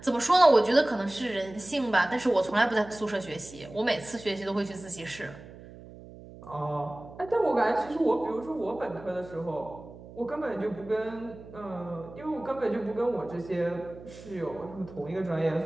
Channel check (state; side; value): noise; right; hum, 17 dB below the sound